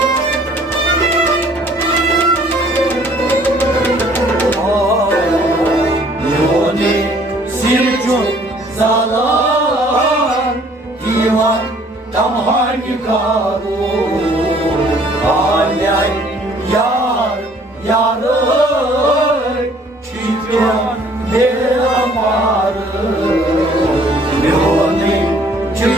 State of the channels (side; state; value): both; normal; correlation 0.58